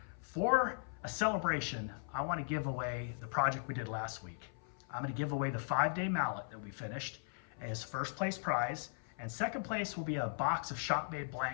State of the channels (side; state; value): right; silent; 52 dB below the other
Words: For a celebration, I want to give away the project we did last week. I'm going to give away the 5-day mallet that we finished as first place prize. And second place will be a box of shop-made